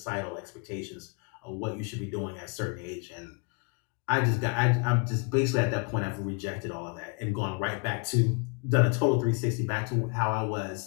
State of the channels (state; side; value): quieter; right; 35.6 dB